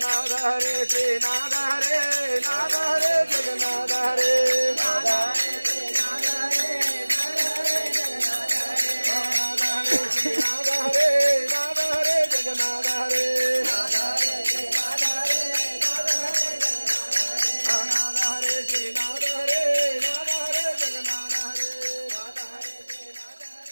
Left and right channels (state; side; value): inverted; both; correlation -1.00